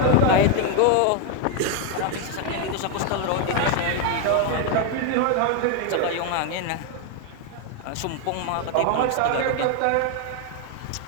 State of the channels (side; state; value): both; different; correlation 0.01